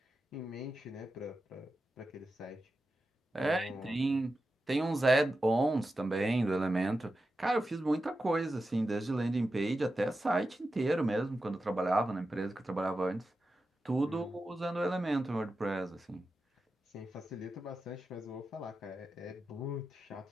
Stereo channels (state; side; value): normal; both; correlation 0.91